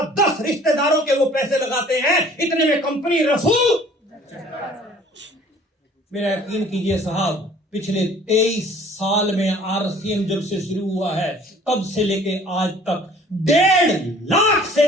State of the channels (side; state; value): both; normal; correlation 0.52